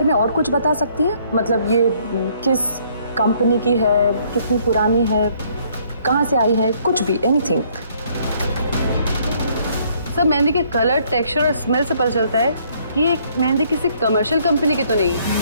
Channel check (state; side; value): inverted; both; correlation -0.65